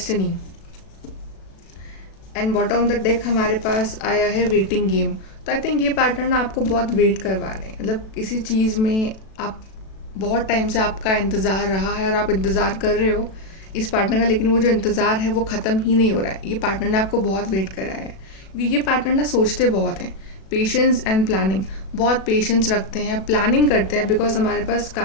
and bottom of the deck हमारे पास आया है वेटिंग गेम। तो आई थिंक ये पार्टनर ना आपको बहुत वेट करवा रहे हैं, मतलब किसी चीज़ में आप बहुत टाइम से आपका इंतज़ार रहा है और आप इंतज़ार कर रहे हो इस पार्टनर का, लेकिन वो जो इंतज़ार है वो ख़त्म ही नहीं हो रहा है। ये पार्टनर ने आपको बहुत वेट कराया है, क्योंकि ये पार्टनर ना सोचते बहुत हैं। पेशेंस एंड प्लानिंग, बहुत पेशेंस रखते हैं, प्लानिंग करते हैं, बिकॉज हमारे पास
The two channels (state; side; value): late; right; 37 ms